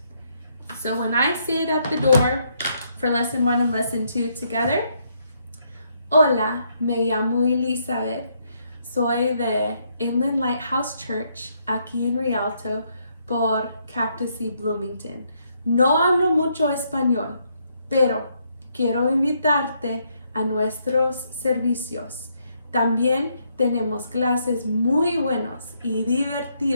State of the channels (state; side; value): inverted; both; correlation -0.74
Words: So when I say it at the door for lesson 1 and lesson 2 together, hola, me llamo Elizabeth. Soy de Inland Lighthouse Church, aquí en Rialto, por Cactus y Bloomington. No hablo mucho español, pero quiero invitarte a nuestros servicios. También tenemos clases muy buenos y